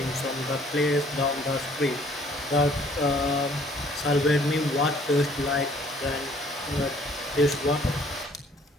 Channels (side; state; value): both; normal; correlation 0.59